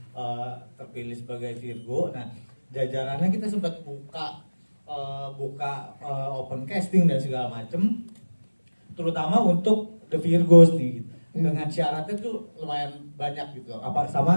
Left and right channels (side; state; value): both; inverted; correlation -1.00